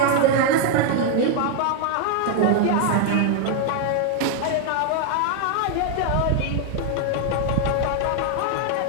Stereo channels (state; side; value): different; both; correlation 0.00